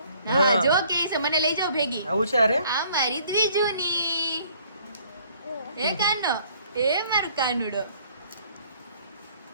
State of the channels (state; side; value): inverted; both; correlation -0.59